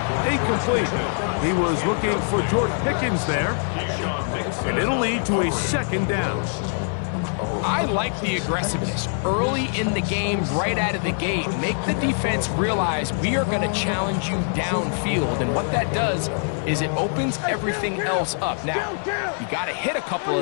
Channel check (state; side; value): silent; right; 63 dB below the other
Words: incomplete. He was looking for George Pickens there. And it'll lead to a second down. I like the aggressiveness early in the game, right out of the gate. Make the defense realize we are going to challenge you downfield, and what that does is it opens everything else up. Now, you got to hit a couple